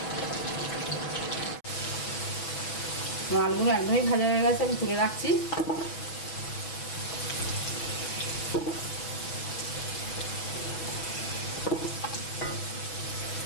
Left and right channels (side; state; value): right; late; 6.2 ms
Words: আলুগুলো একদমই ভাজা হয়ে গেছে, আমি তুলে রাখছি।